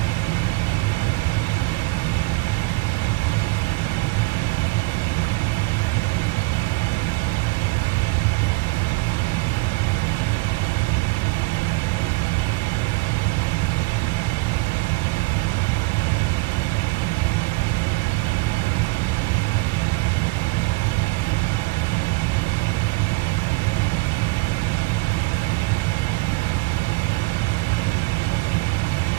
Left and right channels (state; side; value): quieter; left; 26.9 dB